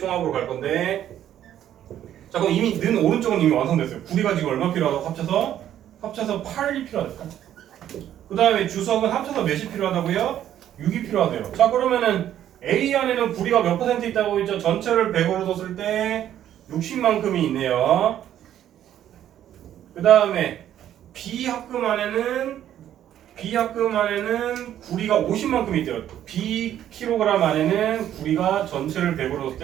갈 건데, 자, 그럼 이미 는 오른쪽은 이미 완성됐어요. 구리가 지금 얼마 필요하다고 합쳐서 8이 필요하다. 그 다음에 주석은 합쳐서 몇이 필요하다고요? 6이 필요하대요. 자, 그러면은 A 안에는 구리가 몇 퍼센트 있다고 했죠? 전체를 100으로 뒀을 때 60만큼이 있네요. 그 다음에 B 합금 안에는 구리가 50만큼이 있대요. B 킬로그램 안에는 구리가 전체를 100으로 뒀을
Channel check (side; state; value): left; quieter; 11.1 dB